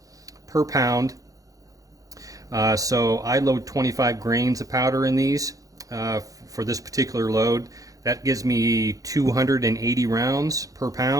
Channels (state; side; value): late; left; 0.17 ms